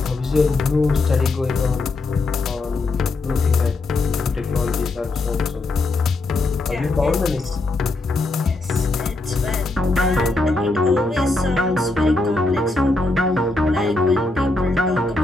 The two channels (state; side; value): quieter; right; 3.1 dB